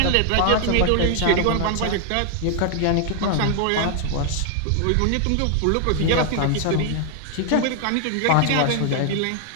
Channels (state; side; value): different; both; correlation 0.00